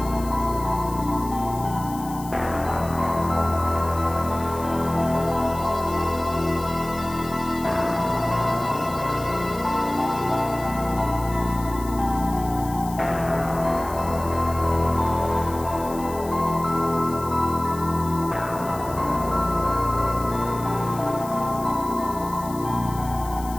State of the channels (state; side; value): noise; left; hiss, 16 dB below the sound